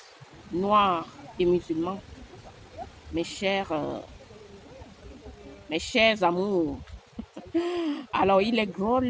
noirs et musulmans, mes chers amours, alors il est drôle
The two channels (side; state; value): both; identical; correlation 1.00